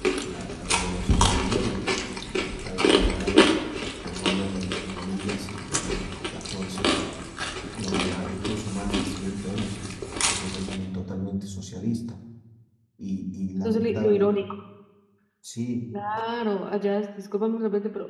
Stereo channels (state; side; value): identical; both; correlation 1.00